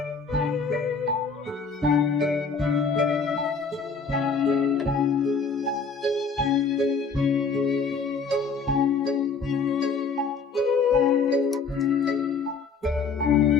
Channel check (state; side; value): quieter; right; 4.9 dB